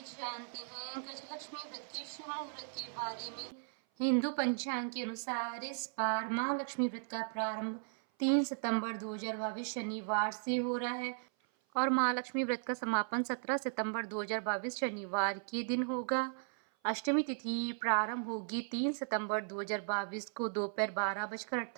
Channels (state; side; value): silent; left; 53 dB below the other